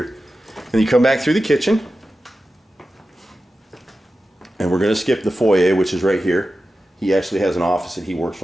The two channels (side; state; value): both; normal; correlation 0.93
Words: And you come back through the kitchen. And we're going to skip the foyer, which is right here. He actually has an office that he works